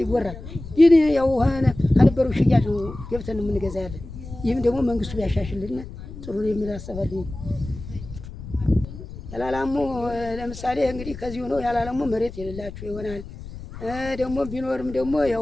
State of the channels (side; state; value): left; noise; rumble, 12 dB below the sound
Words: ይወራል። ግን ያው ከነበረው ሽያጭ ገብተን የምንገዛ ያለን። ይህም ደግሞ መንግስቱ ቢያሻሽልና ጥሩ የሚል አሰባለሁ። ያላላሙ ለምሳሌ እንግዲህ ከዚህ ሆኖ ያላላሙ መሬት የሌላችሁ ይሆናል። ደግሞ ቢኖርም ደግሞ